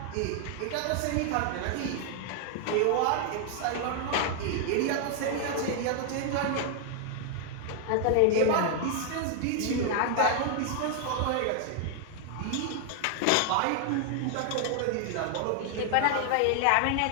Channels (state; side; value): different; both; correlation 0.00